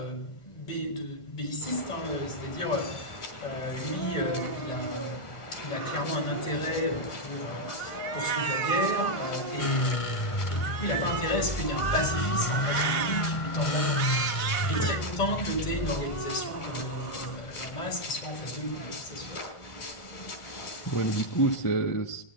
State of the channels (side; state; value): right; late; 1.5 ms